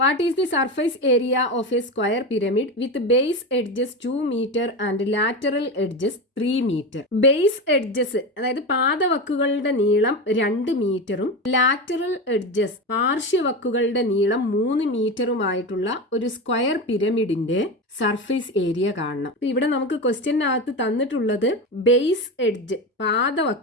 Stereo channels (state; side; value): normal; both; correlation 0.21